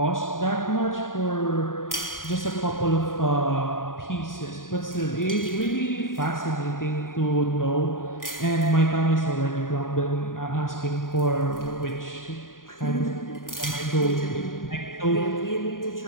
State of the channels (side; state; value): right; late; 0.90 ms